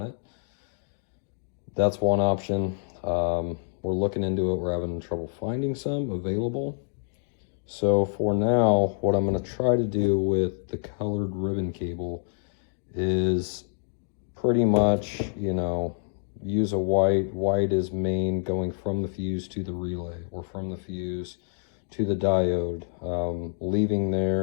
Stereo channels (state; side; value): silent; right; digital silence